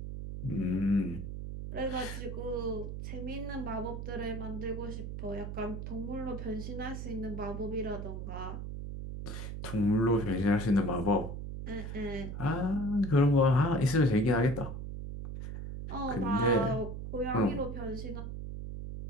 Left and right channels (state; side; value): noise; right; hum, 6 dB below the sound